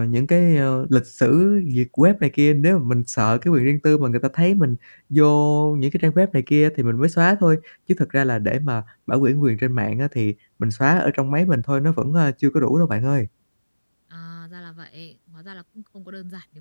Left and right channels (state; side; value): inverted; both; correlation -1.00